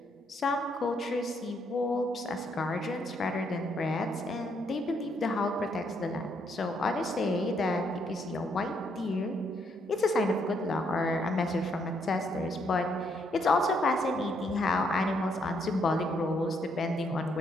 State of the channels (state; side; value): normal; both; correlation 0.73